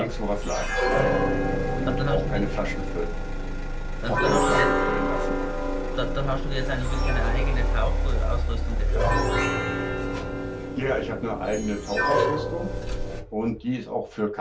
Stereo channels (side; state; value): both; identical; correlation 1.00